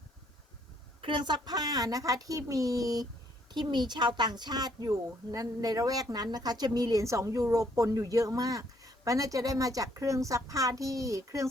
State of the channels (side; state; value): both; normal; correlation 0.67